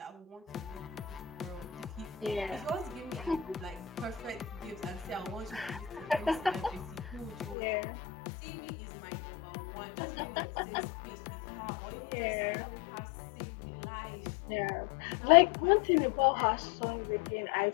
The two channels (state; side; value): drops out; right; at 7.6 s